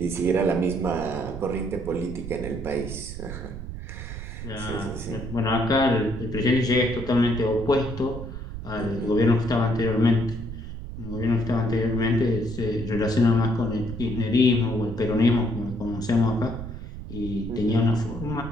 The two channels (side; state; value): right; noise; rumble, 9 dB below the sound